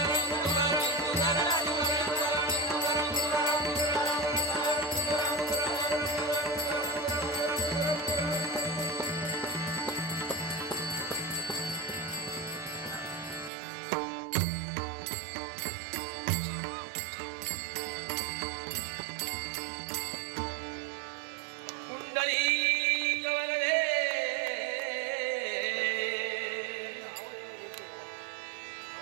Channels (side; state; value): left; drops out; at 13.5 s